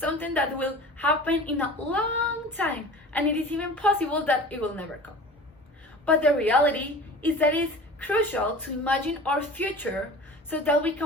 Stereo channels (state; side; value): normal; both; correlation 0.39